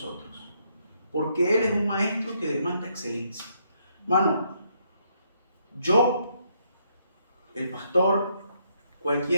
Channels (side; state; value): both; inverted; correlation -0.73